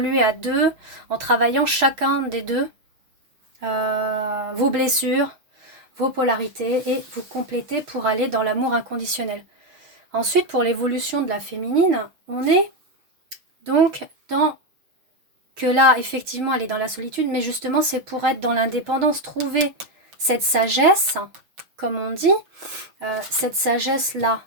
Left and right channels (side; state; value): left; late; 6.3 ms